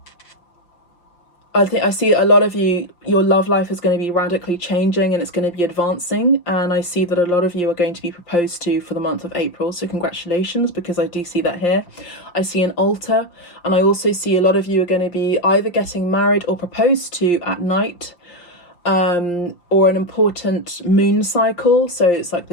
I see a lot of you, your love life is going to be radically changing and it's going to be advancing. And I see that a lot of you are going to be proposed to for the month of April. So congratulations, because I do see that here. I see an altar, and I also see a lot of you are going to be either getting married or proposed to at night, or an important moon cycle. So it's like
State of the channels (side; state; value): right; late; 5.7 ms